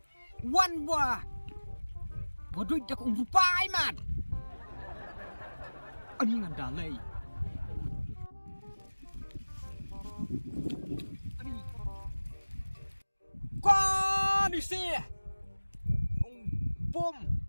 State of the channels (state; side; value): inverted; both; correlation -1.00